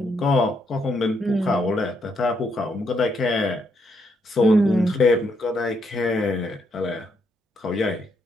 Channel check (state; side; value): normal; both; correlation 0.76